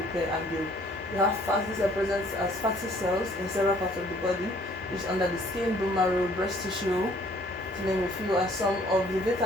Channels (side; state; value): both; normal; correlation 0.59